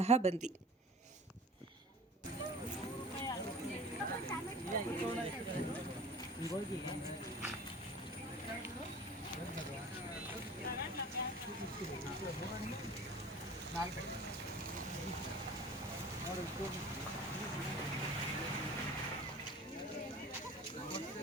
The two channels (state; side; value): normal; both; correlation 0.41